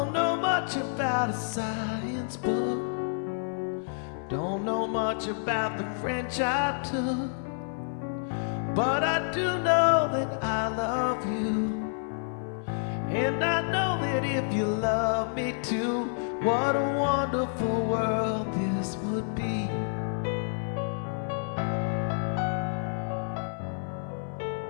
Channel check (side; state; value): right; silent; 59 dB below the other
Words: know much about a science book, don't know much about the French I took, but I do know that I love you, and I know that if you love me too, what a wonderful world this would be.